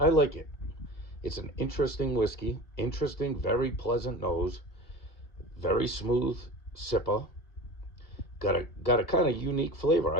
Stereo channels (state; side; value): late; right; 2.0 ms